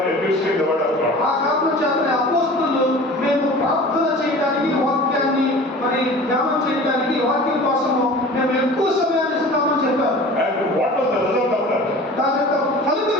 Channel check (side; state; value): both; normal; correlation 0.40